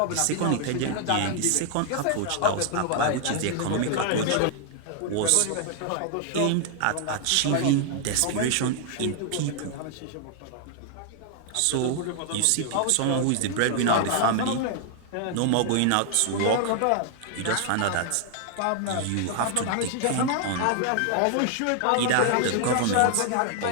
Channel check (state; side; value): different; both; correlation 0.00